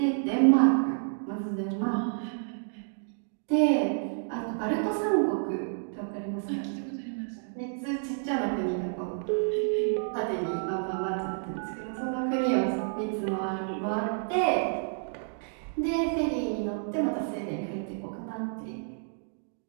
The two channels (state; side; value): silent; left; digital silence